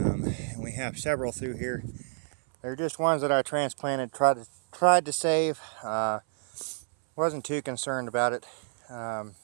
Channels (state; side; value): silent; left; 59 dB below the other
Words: we have several through here. They're just ones that I transplanted, tried to save. Wasn't too concerned about it.